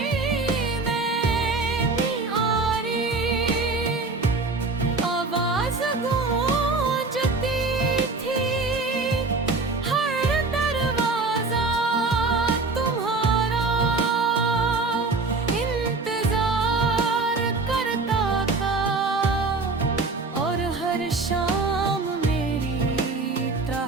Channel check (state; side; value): quieter; left; 3.7 dB